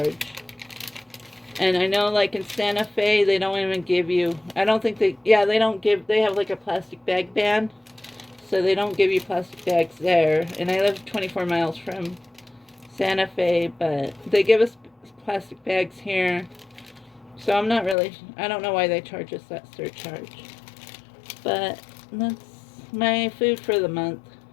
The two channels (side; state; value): right; drops out; at 17.9 s